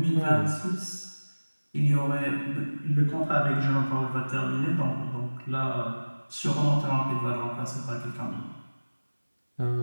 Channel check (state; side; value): inverted; both; correlation -1.00